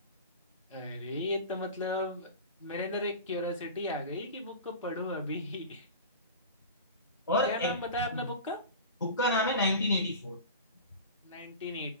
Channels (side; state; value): both; inverted; correlation -0.32